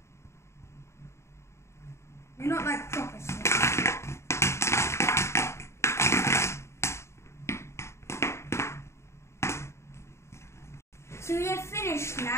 You're not like proper slime. So we're finished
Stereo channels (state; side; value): late; right; 0.13 ms